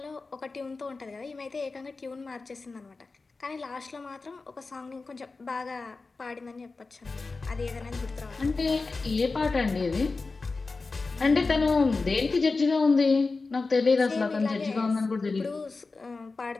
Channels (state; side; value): quieter; right; 3.9 dB